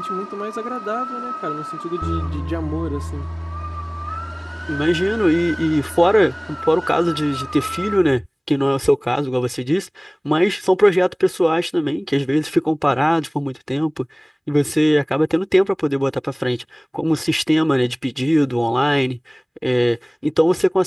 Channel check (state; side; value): identical; both; correlation 1.00